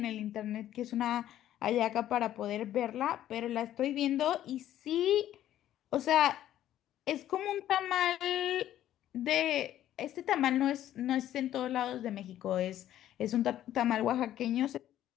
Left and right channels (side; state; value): right; quieter; 12.3 dB